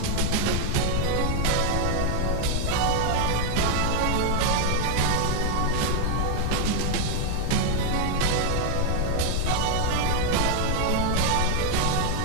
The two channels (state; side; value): different; both; correlation 0.00